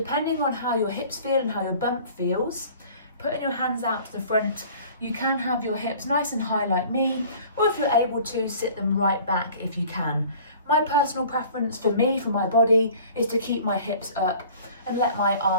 on how your hips feel and how your bump feels, putting your hands out to the front, you can have your hips nice and high like me, or if you're able to, sit them right back if you can. My personal preference for me, for my body, is to keep my hips up and let my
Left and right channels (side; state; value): both; inverted; correlation -0.47